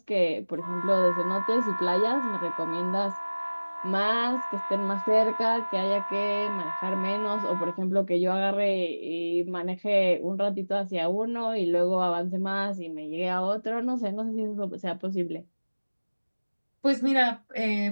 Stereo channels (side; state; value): both; inverted; correlation -1.00